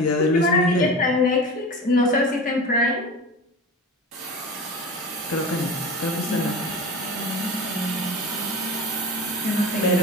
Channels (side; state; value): both; normal; correlation 0.31